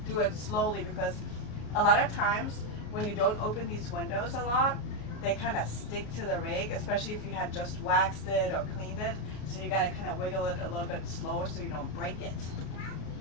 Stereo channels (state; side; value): late; right; 33 ms